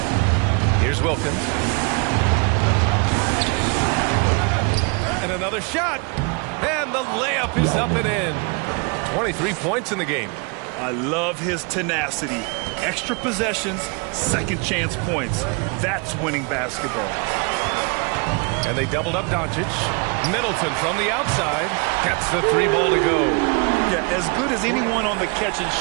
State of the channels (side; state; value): left; quieter; 32.8 dB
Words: Here's Wilkins. And another shot. And the layup is up and in. 23 points in the game. I love his tenacity. Extra possessions, second chance points. That's winning basketball. And they doubled up Doncic. Middleton from the outside gets the three ball to go. Yeah, as good as anyone on the catch and